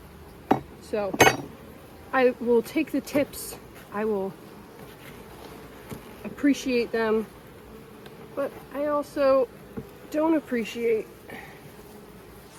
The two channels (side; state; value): both; identical; correlation 1.00